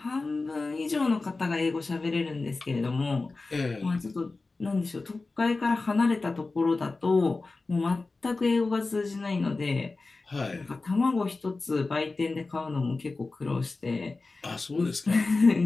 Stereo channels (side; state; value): right; quieter; 3.6 dB